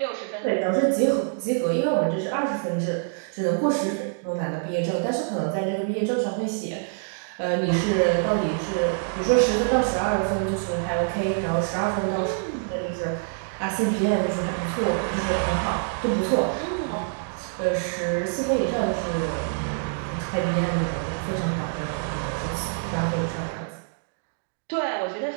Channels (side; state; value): left; silent; digital silence